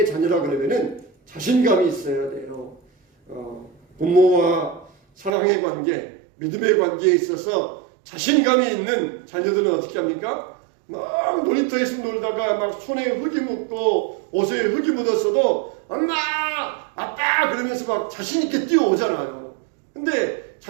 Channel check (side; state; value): left; drops out; at 5.3 s